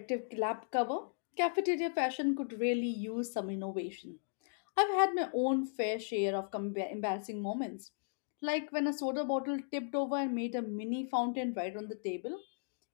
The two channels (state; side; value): silent; right; digital silence